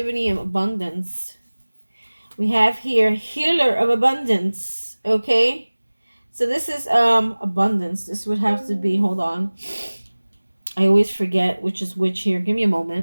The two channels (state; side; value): inverted; both; correlation -1.00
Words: and abundance. We have here healer of abundance. Okay. So this is abundance. This would have to be, hold on. I always forget which is which here. Give me a